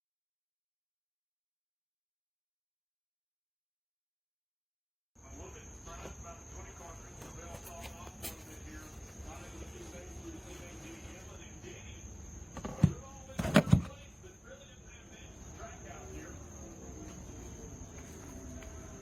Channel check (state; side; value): identical; both; correlation 1.00